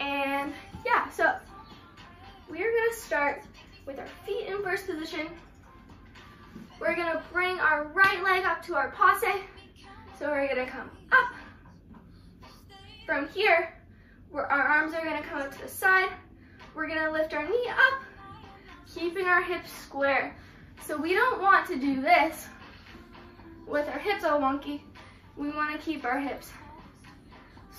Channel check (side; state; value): both; identical; correlation 1.00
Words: yeah, so we're gonna start with our feet in first position. We're gonna bring our right leg up to our passe. So we're gonna come up. From here, our arms are gonna come up to the side. We're gonna lift our knee up, keeping our hips square. So we don't want to do this with our hips all wonky. We wanna keep our hips